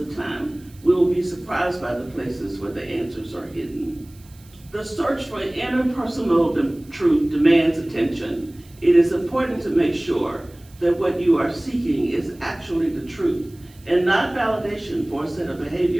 time, we will be surprised by the places where the answers are hidden. The search for interpersonal truth demands attention. It is important to make sure that what you are seeking is actually the truth, and not validation for a set of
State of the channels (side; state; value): right; noise; hiss, 27 dB below the sound